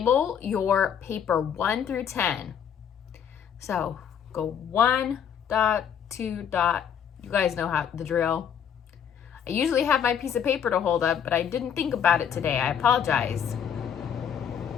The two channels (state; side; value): quieter; right; 8.2 dB